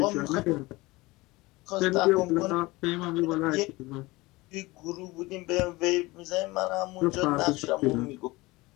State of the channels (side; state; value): right; quieter; 21.5 dB